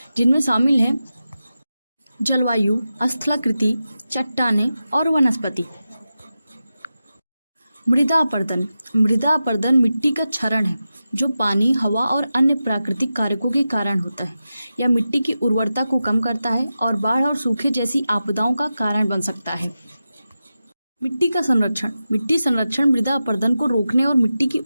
जिनमें शामिल है जलवायु, स्थलाकृति, चट्टानें और वनस्पति। मृदा अपरदन। मृदा अपरदन मिट्टी का क्षरण है जो पानी, हवा और अन्य प्राकृतिक कारकों के कारण होता है। यह मिट्टी की उर्वरता को कम करता है और बाढ़ और सूखे जैसी आपदाओं का कारण बन सकता है। मिट्टी का संरक्षण। मिट्टी संरक्षण मृदा अपरदन को रोकने और मिट्टी की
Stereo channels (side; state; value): both; inverted; correlation -0.92